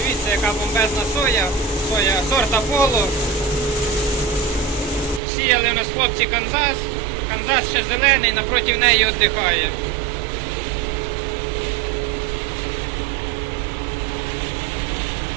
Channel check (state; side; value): drops out; left; at 5.2 s